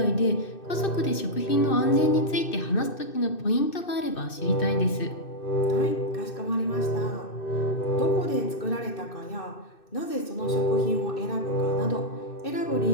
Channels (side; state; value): right; late; 2.6 ms